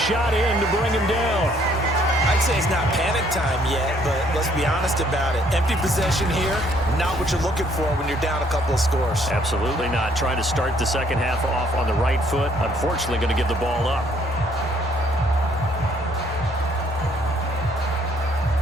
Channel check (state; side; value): normal; both; correlation 0.65